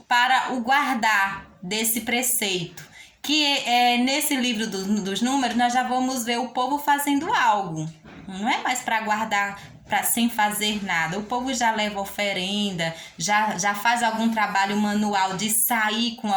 para o guardar desse preceito. Que nesse livro dos Números, nós já vamos ver o povo fazendo algo. Não é mais para guardar sem fazer nada. O povo já leva oferenda, já faz algum trabalho manual de sair com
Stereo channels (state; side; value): identical; both; correlation 1.00